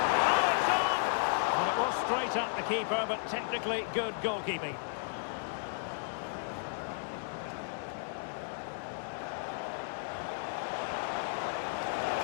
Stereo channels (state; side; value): silent; right; digital silence